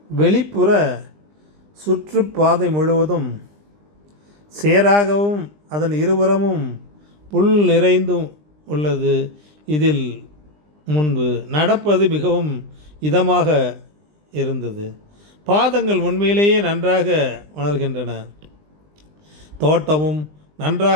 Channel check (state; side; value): late; left; 20 ms